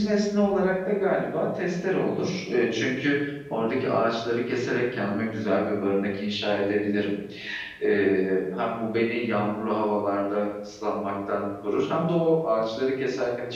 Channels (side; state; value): both; identical; correlation 1.00